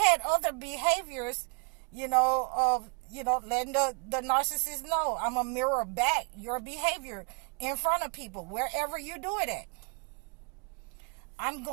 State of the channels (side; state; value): left; quieter; 34.9 dB